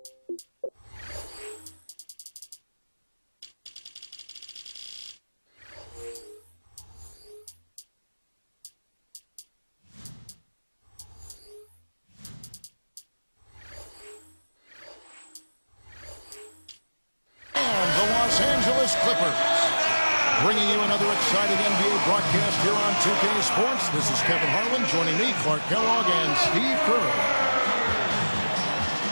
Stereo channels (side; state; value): both; inverted; correlation -1.00